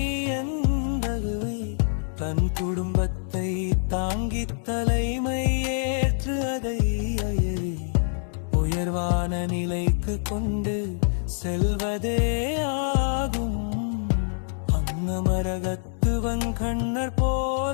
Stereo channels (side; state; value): right; silent; digital silence